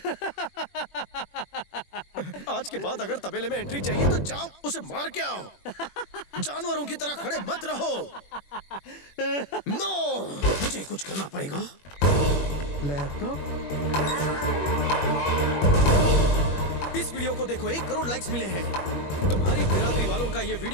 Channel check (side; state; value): right; late; 21 ms